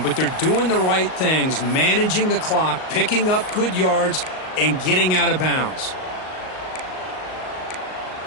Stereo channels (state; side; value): late; right; 38 ms